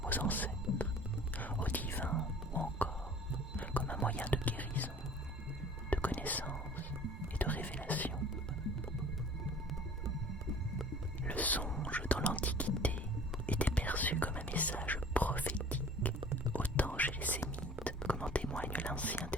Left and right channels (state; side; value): normal; both; correlation 0.47